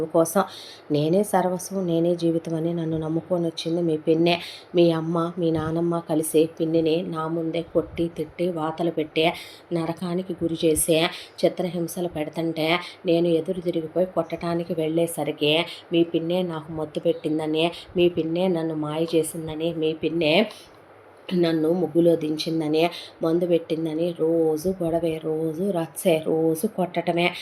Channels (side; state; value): both; identical; correlation 1.00